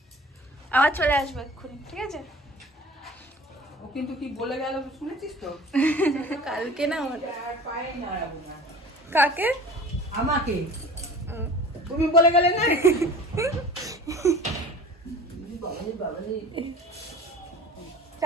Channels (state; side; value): normal; both; correlation 0.42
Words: আবার চলে আসবো এক্ষুনি, ঠিক আছে? ও কিন্তু কি বলে গেল শুনেছিস তো? কালকে না কাকে? আমাকে তুমি বলে গেলে না?